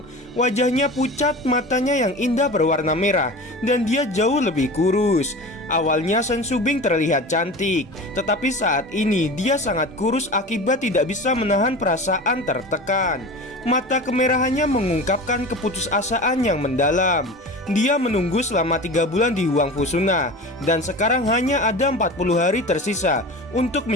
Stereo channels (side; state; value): both; normal; correlation 0.33